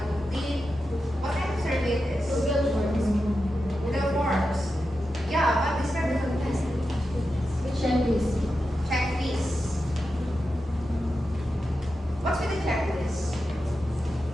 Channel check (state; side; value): normal; both; correlation 0.90